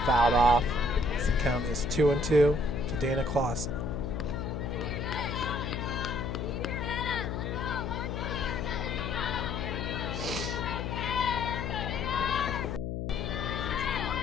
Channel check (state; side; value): noise; left; hum, 3 dB below the sound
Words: fouled off. The count is 2-2 to Dana Clausen.